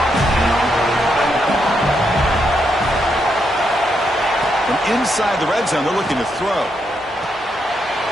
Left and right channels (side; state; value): both; normal; correlation 0.80